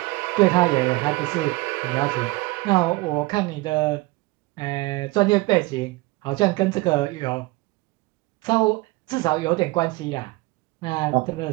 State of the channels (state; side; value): quieter; left; 22.3 dB